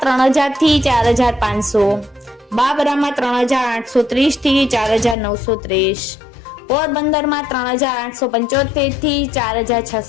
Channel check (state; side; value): drops out; right; at 5.2 s